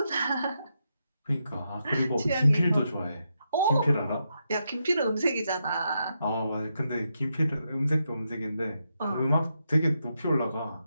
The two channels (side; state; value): both; inverted; correlation -0.83